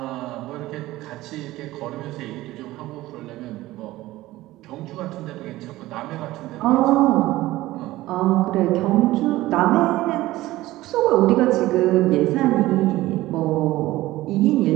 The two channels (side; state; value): left; quieter; 17.1 dB